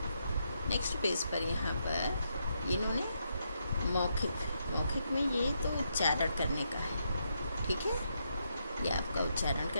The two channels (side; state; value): both; inverted; correlation -0.80